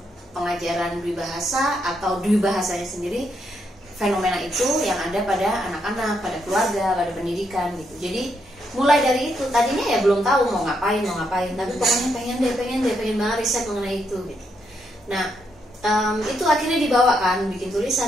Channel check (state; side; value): normal; both; correlation 0.78